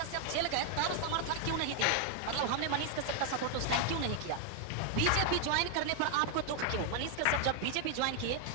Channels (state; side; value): different; both; correlation 0.00